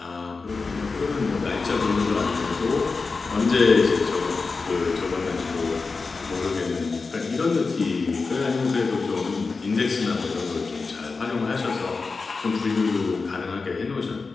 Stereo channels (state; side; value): quieter; right; 4.3 dB